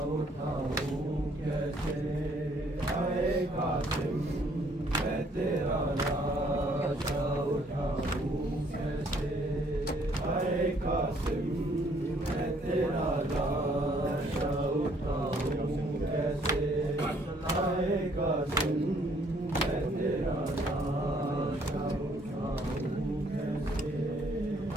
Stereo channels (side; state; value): both; normal; correlation 0.64